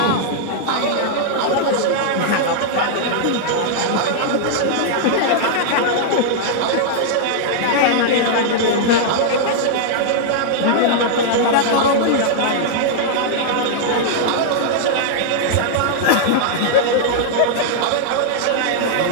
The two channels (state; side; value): different; both; correlation -0.01